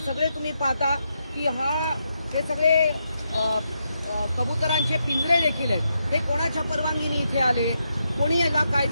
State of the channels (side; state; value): both; inverted; correlation -0.82